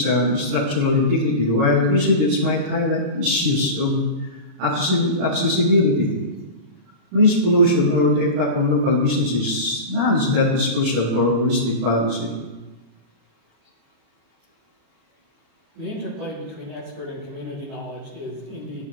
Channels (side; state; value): left; late; 34 ms